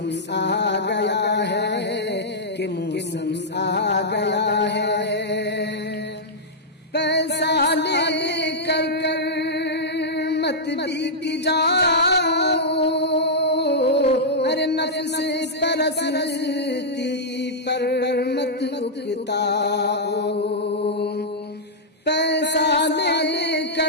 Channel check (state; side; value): normal; both; correlation -0.09